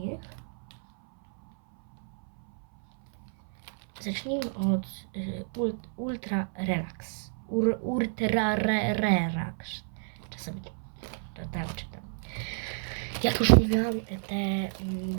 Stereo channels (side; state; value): left; silent; 58 dB below the other